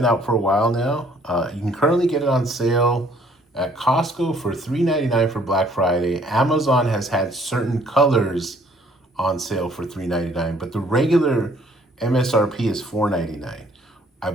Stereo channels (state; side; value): normal; both; correlation 0.61